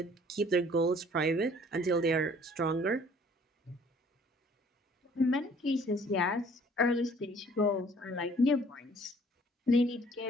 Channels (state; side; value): normal; both; correlation 0.56